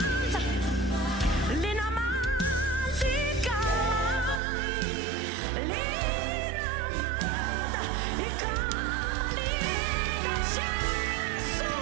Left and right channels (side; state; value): left; drops out; at 4.4 s